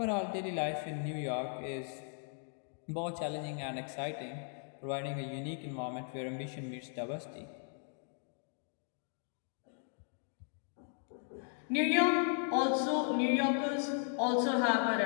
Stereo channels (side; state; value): right; silent; 53 dB below the other